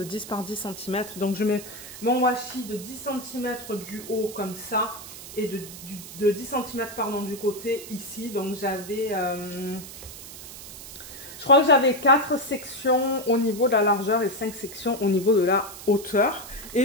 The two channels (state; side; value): noise; right; hiss, 13 dB below the sound